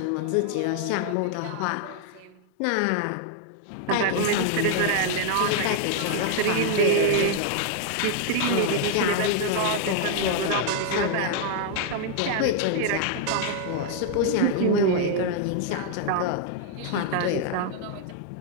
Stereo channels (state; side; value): different; both; correlation 0.00